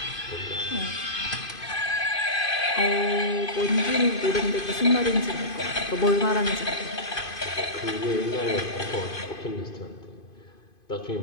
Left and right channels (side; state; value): right; late; 2.5 ms